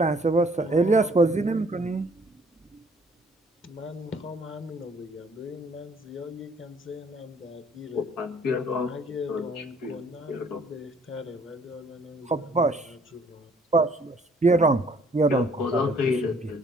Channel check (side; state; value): both; normal; correlation 0.60